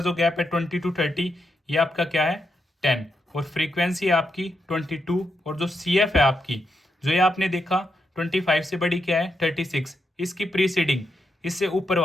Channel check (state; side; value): normal; both; correlation 0.83